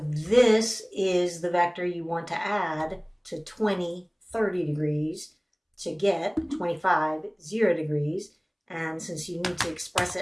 is the vector you want to add to 20 30 degrees to get 25 0 degrees. And since you need to express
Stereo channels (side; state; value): both; identical; correlation 1.00